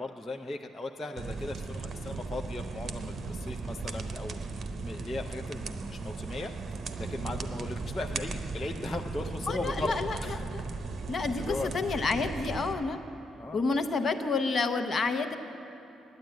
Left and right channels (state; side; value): normal; both; correlation 0.79